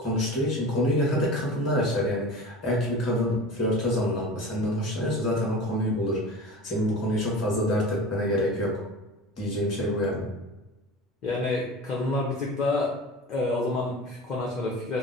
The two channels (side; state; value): both; normal; correlation 0.34